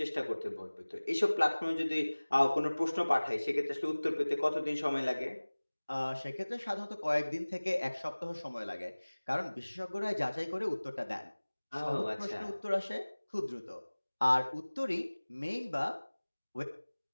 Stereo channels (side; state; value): both; inverted; correlation -1.00